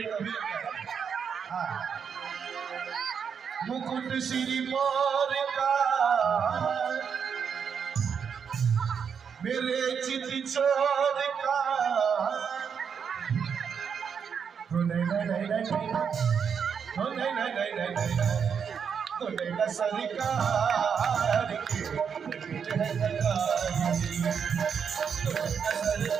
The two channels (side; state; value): left; quieter; 6.9 dB